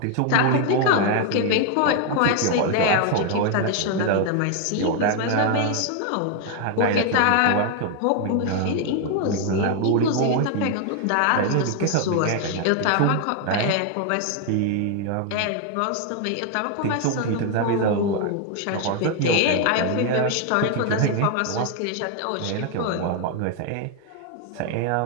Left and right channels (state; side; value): different; both; correlation 0.00